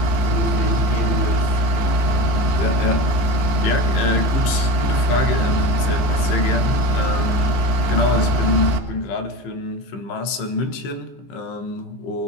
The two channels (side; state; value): right; late; 15 ms